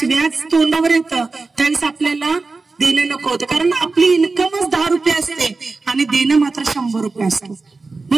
व्याज तोंडावर येतं त्यावेळेस आपल्याला देणं नको होतं, कारण आपली इन्कमच 10 रुपये असते आणि देणं मात्र 100 रुपये असतं.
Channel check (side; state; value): left; quieter; 3.9 dB